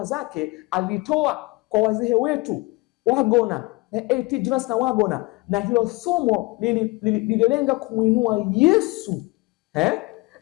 zake alitoa kwa wazee wetu Wagona, A.T. Jonas na Wagona, na hilo somo lililenga kumuinua Yesu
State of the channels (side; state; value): right; quieter; 24.1 dB